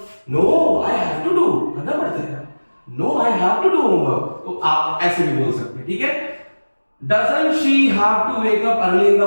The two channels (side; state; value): both; inverted; correlation -1.00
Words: no I have to do, करना पड़ता है, no I have to do homework, तो आप ऐसे भी बोल सकते हैं। ठीक है, doesn't she have to wake up early in